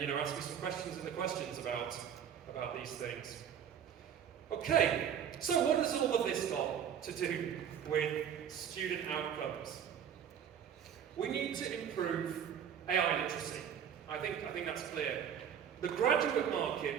ask me some questions in the questions about these things. Okay, so what has all of this got to do with student outcomes? We need to improve AI literacy. I think that's clear. The graduate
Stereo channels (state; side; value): quieter; left; 8.5 dB